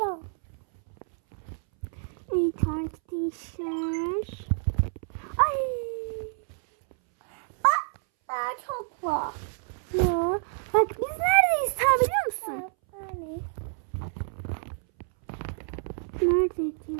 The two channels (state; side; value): silent; left; 59 dB below the other